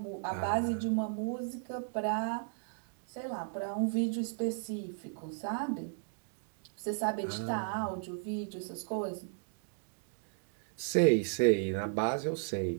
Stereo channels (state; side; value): silent; left; digital silence